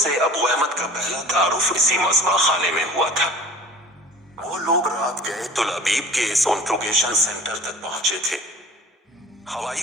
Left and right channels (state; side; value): normal; both; correlation 0.43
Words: ابو احمد کا پہلا تعارف اسی مذبح خانے میں ہوا تھا۔ وہ لوگ رات گئے تل ابیب کے اس انٹروگیشن سینٹر تک پہنچے تھے۔ ہوائی